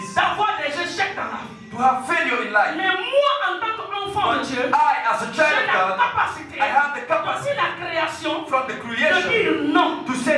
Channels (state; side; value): identical; both; correlation 1.00